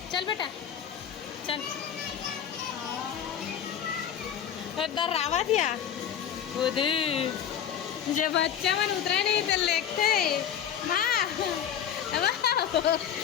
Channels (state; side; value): quieter; right; 9.0 dB